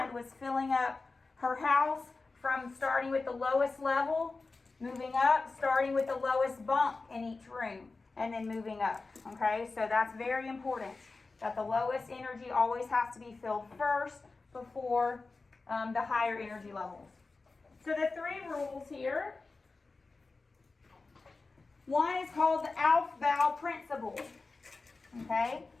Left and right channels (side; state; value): right; quieter; 3.8 dB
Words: was filling up her house from starting with the lowest level, moving up, starting with the lowest bunk in each room, and then moving up, okay? So that's very important, that the lowest energy always has to be filled first before the higher energy levels. So the three rules here. One is called the Aufbau principle. Okay,